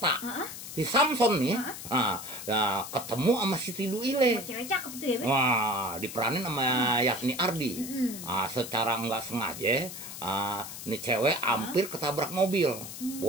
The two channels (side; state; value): left; noise; hiss, 10 dB below the sound